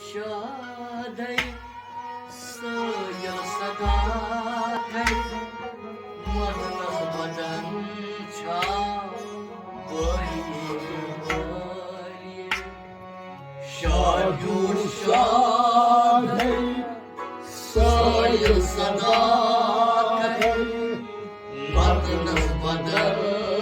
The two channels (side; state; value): both; identical; correlation 1.00